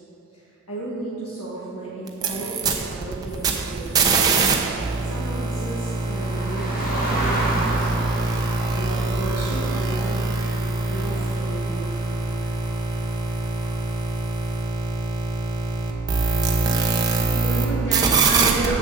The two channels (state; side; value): quieter; left; 3.1 dB